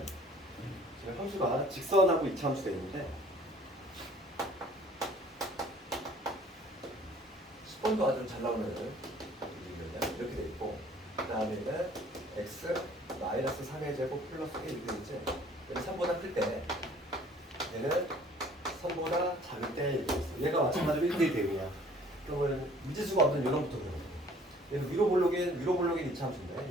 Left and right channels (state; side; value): normal; both; correlation 0.54